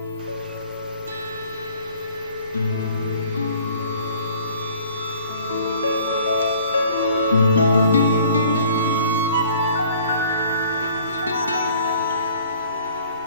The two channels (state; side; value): inverted; both; correlation -0.53